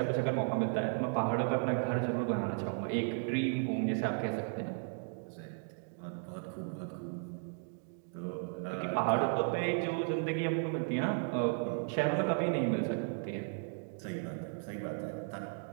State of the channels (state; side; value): silent; left; 54 dB below the other